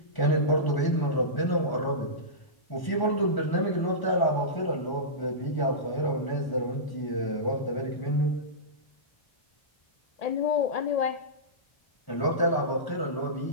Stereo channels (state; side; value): late; right; 1.0 ms